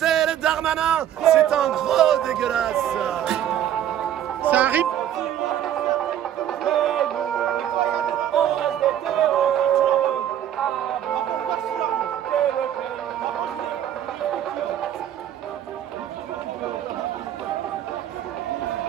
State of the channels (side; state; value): left; quieter; 10.8 dB